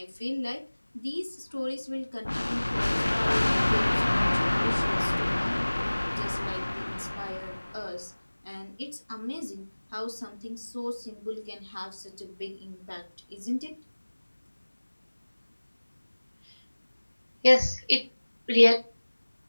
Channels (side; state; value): both; inverted; correlation -1.00